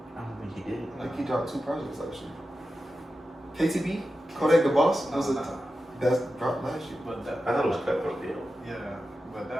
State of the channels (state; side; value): normal; both; correlation 0.92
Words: don't think he did. I think he dropped 2 projects last year. KTB? Kodak the Boss? That's dropped last year. But that, I thought it was Cutthroat Bill. yeah, but